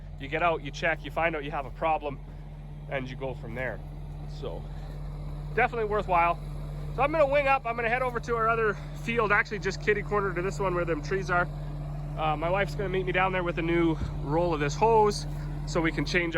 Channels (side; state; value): both; identical; correlation 1.00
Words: you get out, you check, you find out you have a problem, and you go from there. So definitely worthwhile. So I'm gonna wing up, I'm gonna head over to our other field, actually just kitty corner to this one where them trees are. My wife's gonna meet me down there with a new roll of this hose so we can change